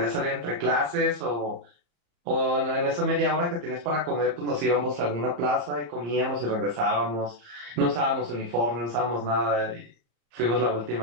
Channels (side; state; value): left; late; 34 ms